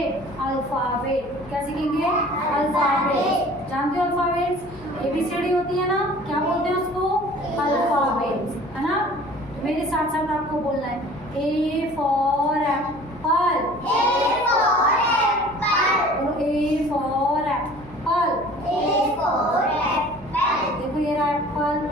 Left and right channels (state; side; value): noise; left; hum, 20 dB below the sound